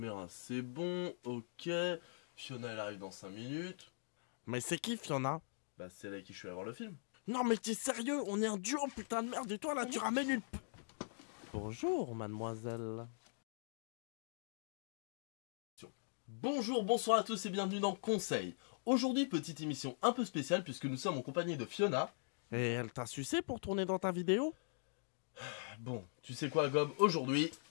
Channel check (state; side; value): silent; right; digital silence